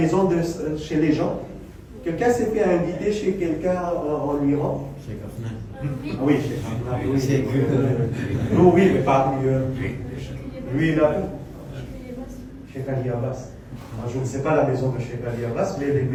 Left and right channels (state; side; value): identical; both; correlation 1.00